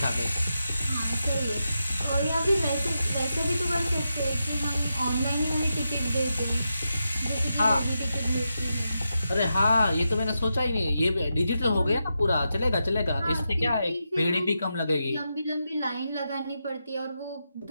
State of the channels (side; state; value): both; inverted; correlation -0.87